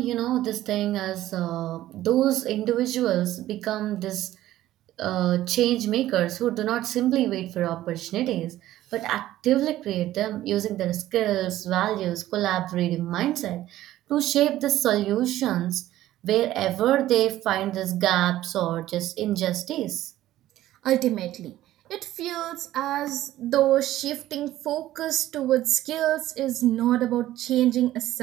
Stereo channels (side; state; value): left; quieter; 14.3 dB